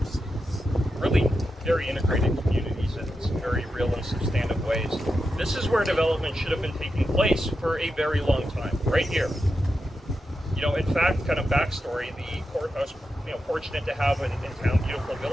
Really very integrated communities in some very real and substantive ways. This is where development should have been taking place for a very long time, right here. In fact, kind of backstory, the courthouse, fortunate to have in town, beautiful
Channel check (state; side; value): normal; both; correlation 0.88